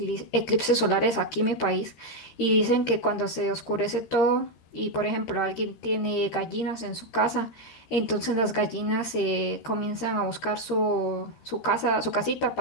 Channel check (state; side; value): late; right; 13 ms